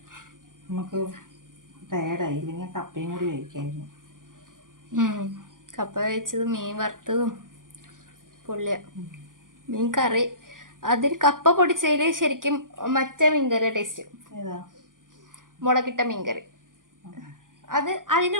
നമുക്ക് ടയർഡായി. ഇല്ലെങ്കിൽ കപ്പയും കൂടി കഴിക്കായിരുന്നു. കപ്പ കഴിച്ചത് മീൻ വറുത്തതും പൊള്ളിയ. മീൻ കറി അതിൽ കപ്പ പൊടിച്ചതിൽ ശരിക്കും മറ്റേ മീൻകറിയുടെ ടേസ്റ്റ്. മുളകിട്ട മീൻകറി. അത് അതിൻ്റെ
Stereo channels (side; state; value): left; late; 0.89 ms